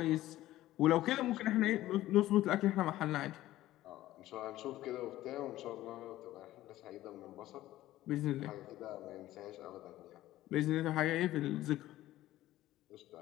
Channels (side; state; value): right; quieter; 15.1 dB